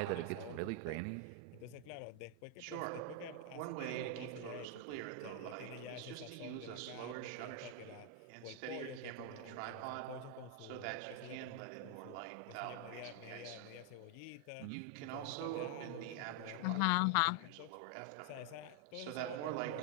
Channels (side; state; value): both; different; correlation 0.00